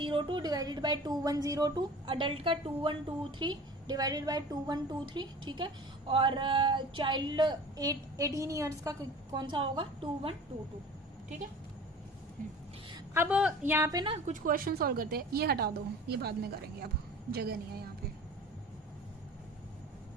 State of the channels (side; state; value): both; normal; correlation 0.42